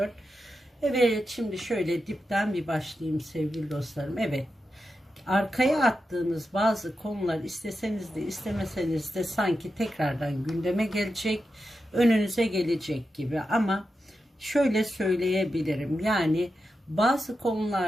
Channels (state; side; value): normal; both; correlation 0.89